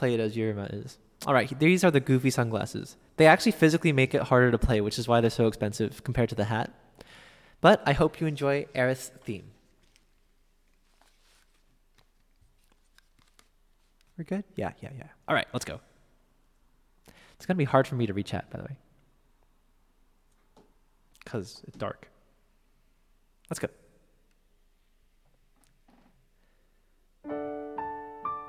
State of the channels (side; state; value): both; identical; correlation 1.00